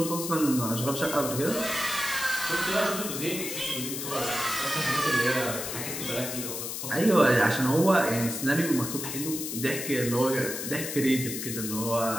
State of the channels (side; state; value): left; noise; hiss, 5 dB below the sound